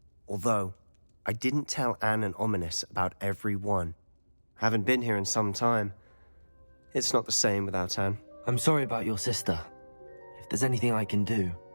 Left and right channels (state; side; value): inverted; both; correlation -1.00